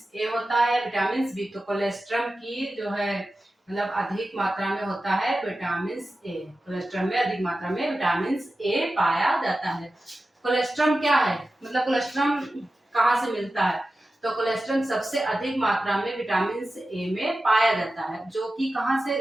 ए होता है, विटामिन बी। तो कोलेस्ट्रम की जो है मतलब अधिक मात्रा में होता है विटामिन ए। कोलेस्ट्रम में अधिक मात्रा में विटामिन ए पाया जाता है। कोलेस्ट्रम क्या है, मतलब कोलेस्ट्रम कहाँ से मिलता है? तो कोलेस्ट्रम सबसे अधिक मात्रा में विटामिन ए में पाया जाता है, जो कि कहाँ से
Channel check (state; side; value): normal; both; correlation 0.94